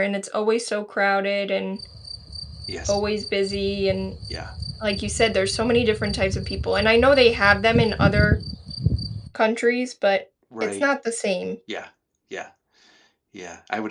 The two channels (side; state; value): both; identical; correlation 1.00